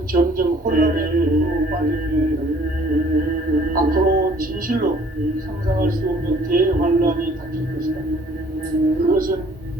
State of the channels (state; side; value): normal; both; correlation 0.57